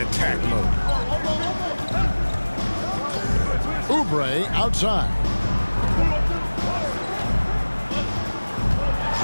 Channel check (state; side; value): inverted; both; correlation -1.00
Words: mode. Oubre outside.